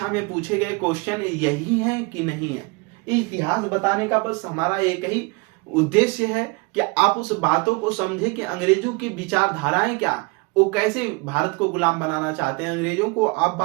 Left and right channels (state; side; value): quieter; left; 27.6 dB